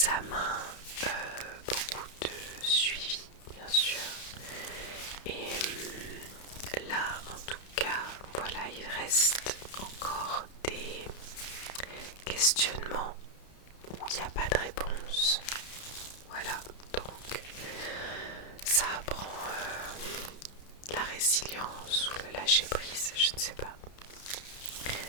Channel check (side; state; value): right; late; 31 ms